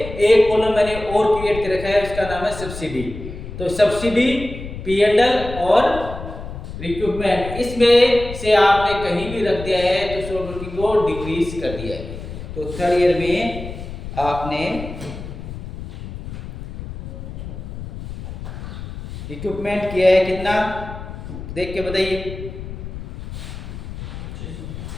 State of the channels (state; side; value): noise; left; rumble, 10 dB below the sound